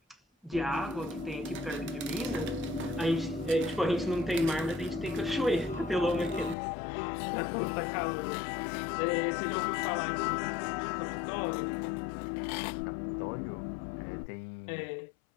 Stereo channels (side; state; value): right; drops out; at 6.6 s